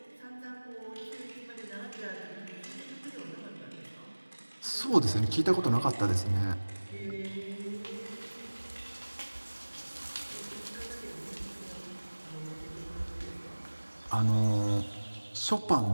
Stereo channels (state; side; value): inverted; both; correlation -1.00